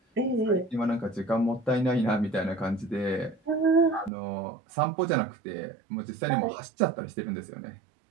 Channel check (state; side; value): drops out; left; at 4.1 s